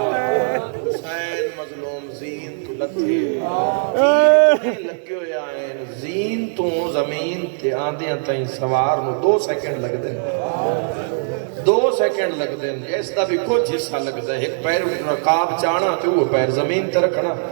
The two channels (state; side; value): silent; left; digital silence